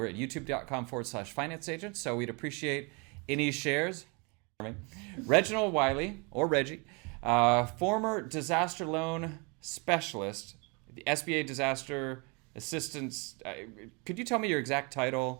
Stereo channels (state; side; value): quieter; left; 31.2 dB